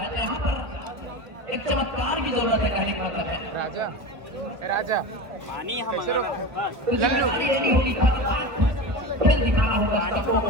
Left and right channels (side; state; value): left; late; 1.5 ms